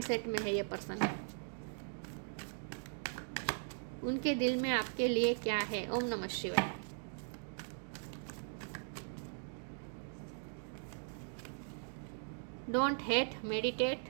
में है ये पर्सन। उनके दिल में आपके लिए क्या है? ओम नमः शिवाय। Don't hate,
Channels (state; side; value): silent; left; digital silence